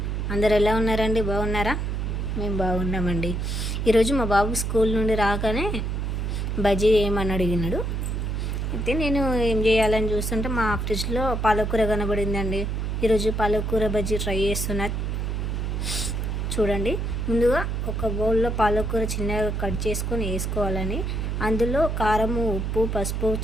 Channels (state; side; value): noise; right; hum, 1 dB below the sound